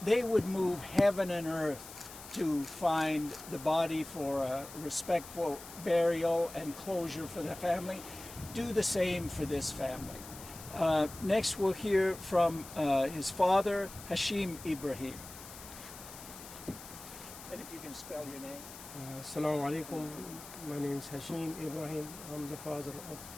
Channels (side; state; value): left; noise; hiss, 15 dB below the sound